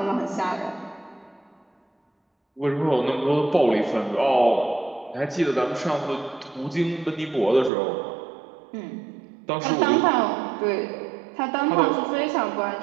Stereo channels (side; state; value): left; drops out; at 7.7 s